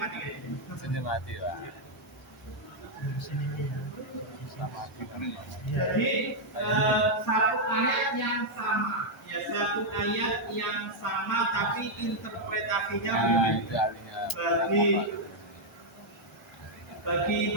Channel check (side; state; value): both; normal; correlation -0.02